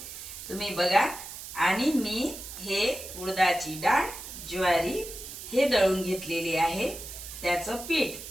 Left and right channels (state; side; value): noise; right; hiss, 11 dB below the sound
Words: तुम्ही बघा. आणि मी हे उडदाची डाळ, ज्वारी हे दळून घेतलेली आहे. त्याचं पीठ,